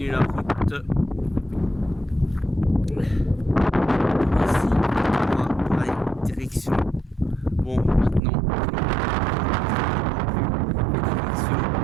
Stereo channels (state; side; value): drops out; left; at 8.2 s